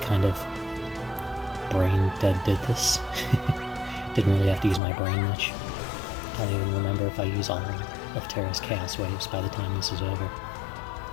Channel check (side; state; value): right; drops out; at 4.8 s